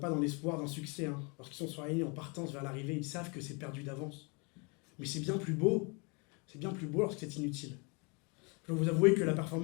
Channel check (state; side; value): quieter; right; 32.2 dB